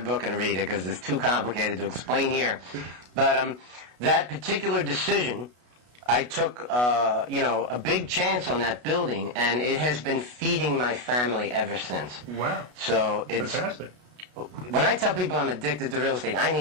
and read it because it's too complicated to explain here. But that particular decision, I took a big chance on that building, and it has been feeding my family ever since. Wow. So it's fantastic. When I tell people I'm addicted to real estate, I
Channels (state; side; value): late; left; 33 ms